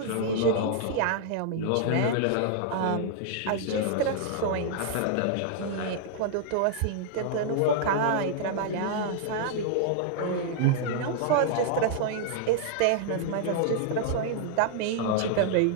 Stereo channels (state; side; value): different; both; correlation -0.01